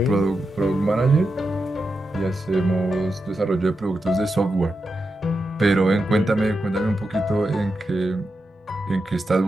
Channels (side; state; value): both; normal; correlation 0.88